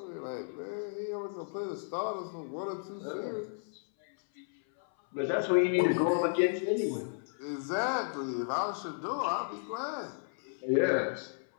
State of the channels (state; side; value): silent; right; 56 dB below the other